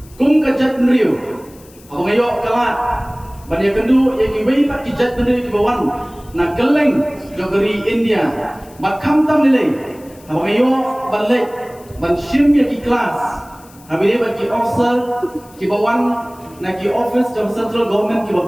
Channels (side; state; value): left; noise; hiss, 25 dB below the sound